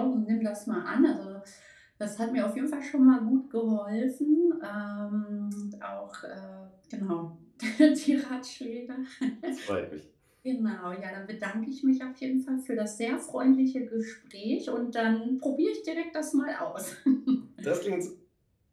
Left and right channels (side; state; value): both; identical; correlation 1.00